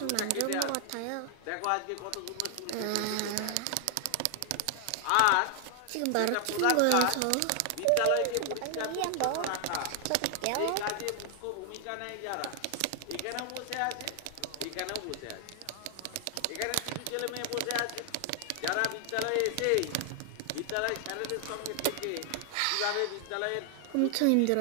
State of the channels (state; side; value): different; both; correlation 0.00